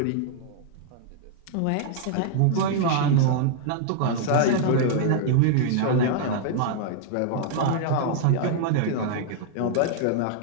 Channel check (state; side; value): different; both; correlation -0.01